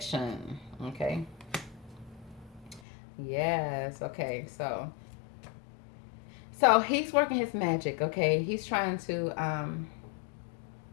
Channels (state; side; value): drops out; right; at 2.8 s